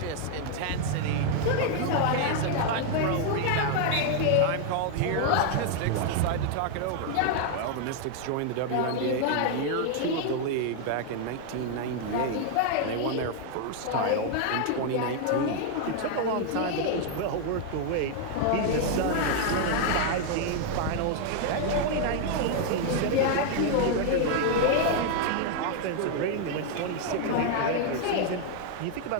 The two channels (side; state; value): both; different; correlation 0.00